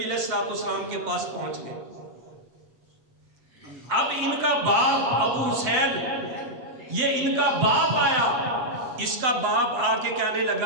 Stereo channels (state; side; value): late; left; 7.7 ms